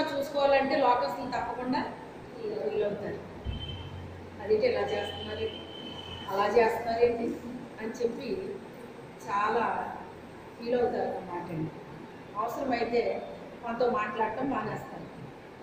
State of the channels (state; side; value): identical; both; correlation 1.00